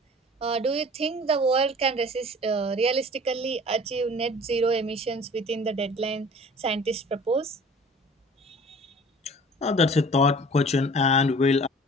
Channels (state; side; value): normal; both; correlation 0.47